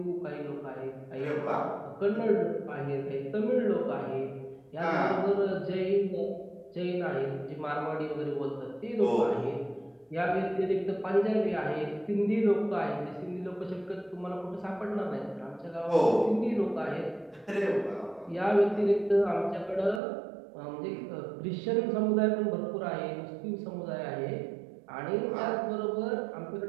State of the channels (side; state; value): left; drops out; at 20.0 s